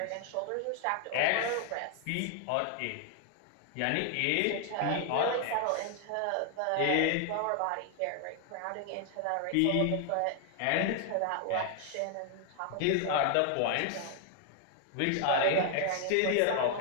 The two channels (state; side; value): different; both; correlation 0.00